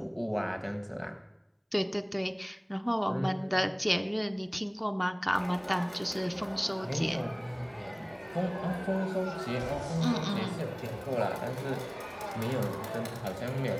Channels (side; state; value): both; identical; correlation 1.00